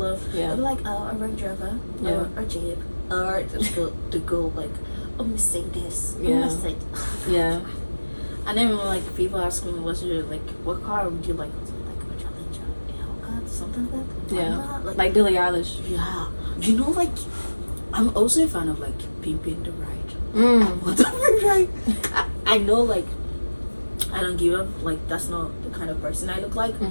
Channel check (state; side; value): inverted; both; correlation -1.00